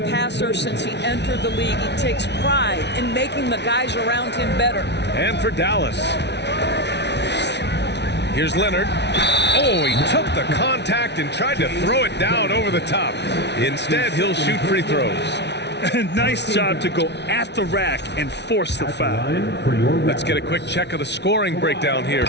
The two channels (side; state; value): right; late; 0.50 ms